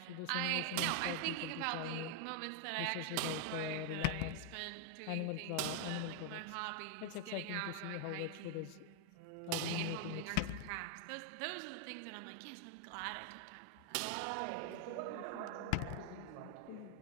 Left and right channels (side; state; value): both; different; correlation 0.00